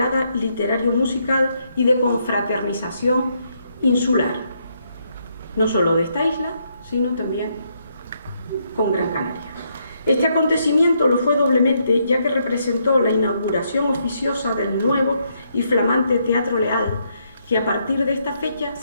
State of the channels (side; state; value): both; inverted; correlation -0.75